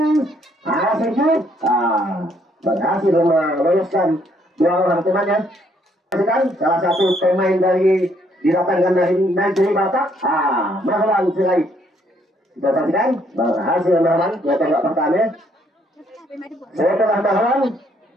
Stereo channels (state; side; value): normal; both; correlation 0.68